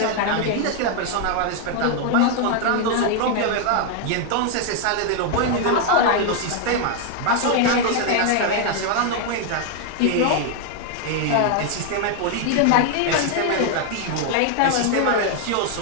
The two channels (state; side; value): different; both; correlation 0.00